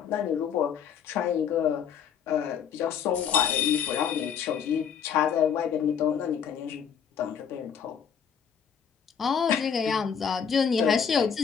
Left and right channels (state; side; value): quieter; right; 7.6 dB